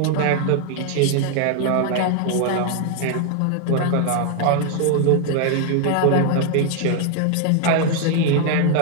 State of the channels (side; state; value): both; different; correlation 0.00